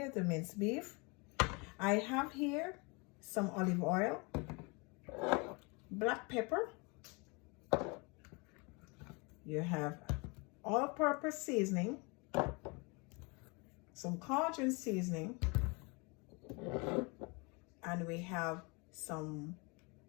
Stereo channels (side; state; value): right; quieter; 29.6 dB